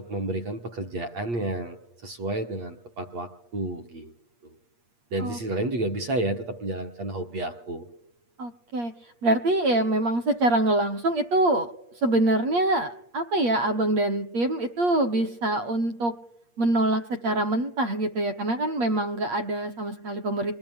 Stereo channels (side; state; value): left; late; 8.5 ms